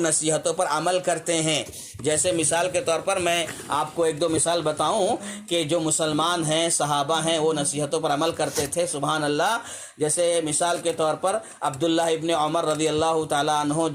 نصیحتوں پر عمل کرتے ہیں۔ جیسے مثال کے طور پر میں آپ کو ایک دو مثال بتاؤں کہ جو مسلمان ہیں، صحابہ ہیں، وہ نصیحتوں پر عمل کرتے تھے، سبحان اللہ۔ جیسے مثال کے طور پر عبداللہ ابن عمر رضی اللہ تعالیٰ عنہ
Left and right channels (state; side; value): identical; both; correlation 1.00